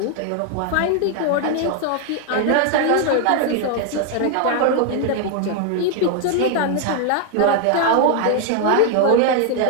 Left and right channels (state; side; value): different; both; correlation 0.00